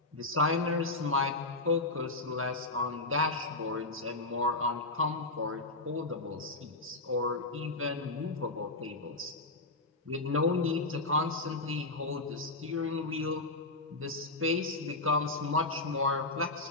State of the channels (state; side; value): quieter; right; 3.1 dB